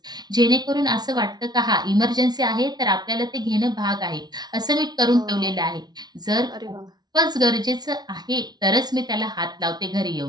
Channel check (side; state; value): left; late; 0.19 ms